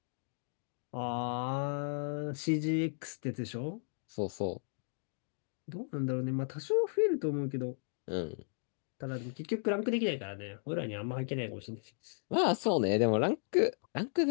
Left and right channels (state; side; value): silent; right; digital silence